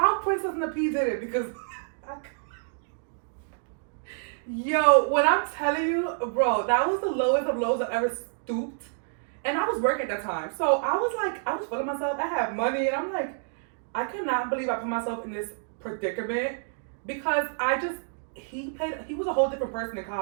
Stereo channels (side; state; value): left; silent; digital silence